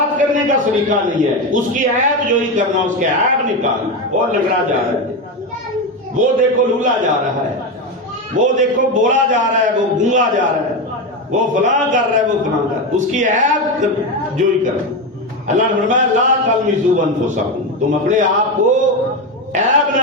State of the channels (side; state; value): both; normal; correlation 0.14